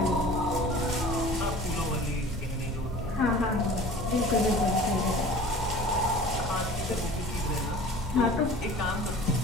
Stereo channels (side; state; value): both; normal; correlation 0.43